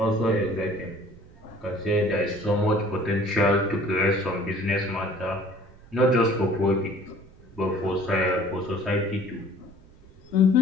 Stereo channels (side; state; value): right; noise; rumble, 23 dB below the sound